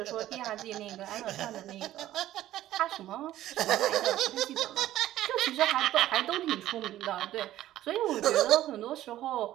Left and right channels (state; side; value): quieter; left; 13.8 dB